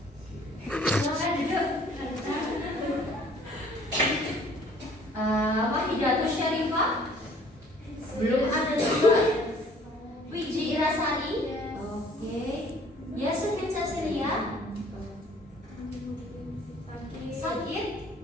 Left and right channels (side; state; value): both; normal; correlation 0.56